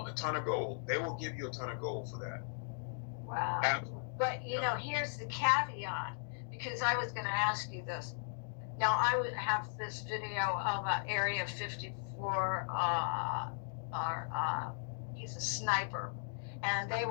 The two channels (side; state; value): right; silent; digital silence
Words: ton of gold. They will give you a ton of gold for that. Wow. But here's the caveat, because I was going to ask you this. Now, I would have this video of Area 54, he's a sniper, and they